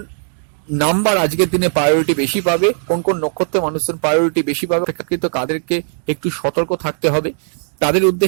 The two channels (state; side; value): silent; left; digital silence